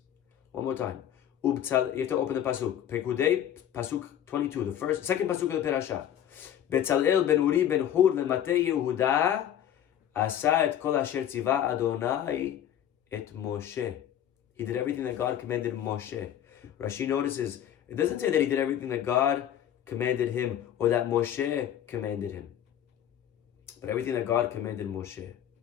One more time. You have to open the pasuk. Pekudei, pasuk 22, the second pasuk of the parasha. Betzalel ben Uri ben Hur mematei Yehuda asa et kol asher tziva Adonai et Moshe. He did everything that God commanded Moshe. Rashi notices, it doesn't say that he did everything that God commanded him or that Moshe commanded him, but everything that God commanded Moshe.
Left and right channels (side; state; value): right; quieter; 10.5 dB